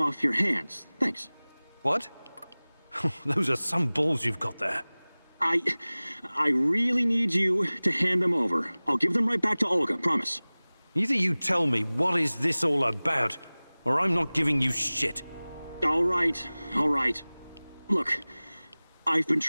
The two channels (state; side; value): inverted; both; correlation -1.00